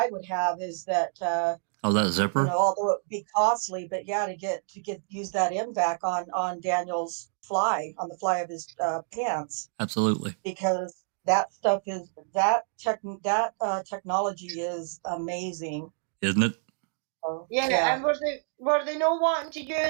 would have is that that zipper, although it would be costly, but to use that MVAC on Daniel's on the fly of his pants. Absolutely, because that stuff is technology is amazing, isn't it? Yeah, and were they not wanting to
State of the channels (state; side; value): silent; left; 59 dB below the other